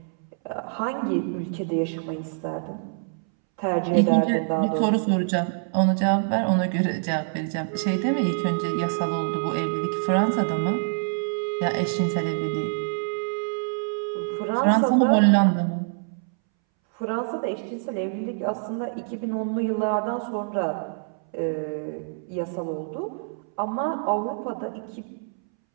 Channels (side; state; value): left; silent; 61 dB below the other